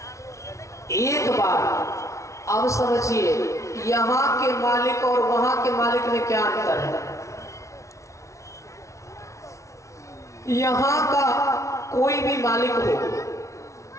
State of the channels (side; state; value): right; late; 0.14 ms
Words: एक बार अब समझिए, यहाँ के मालिक और वहां के मालिक में क्या अंतर है? यहाँ का कोई भी मालिक हो,